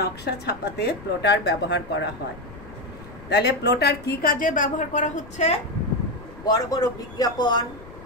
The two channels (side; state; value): left; noise; rumble, 17 dB below the sound